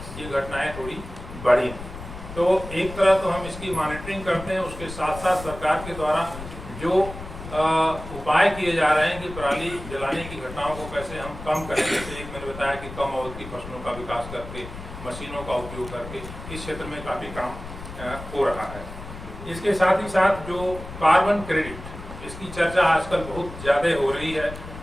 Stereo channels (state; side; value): noise; left; rumble, 12 dB below the sound